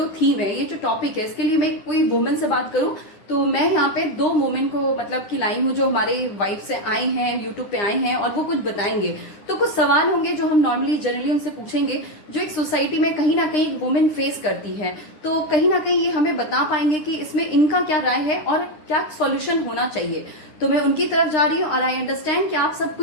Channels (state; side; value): late; right; 9.9 ms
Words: थीम है, ये जो टॉपिक है, इसके लिए मैं कोई वुमेन से बात करूं। तो मैं यहाँ पे दो वुमेन को मतलब कि लाई हूँ जो हमारे वाइफ से आए हैं, यूट्यूब पे आए हैं और वो कुछ बताएंगे। तो कुछ सवाल होंगे जो हम नॉर्मली जनरली उनसे पूछेंगे, जो एक सोसाइटी में कहीं ना कहीं वुमेन फेस करती है। तो कहीं ना कहीं ये हमें बता पाएंगे कि इसमें इनका क्या राय है और क्या सॉल्यूशन होना चाहिए। तो मैं उनकी तरफ जा रही हूँ और आई अंडरस्टैंड कि आप सबको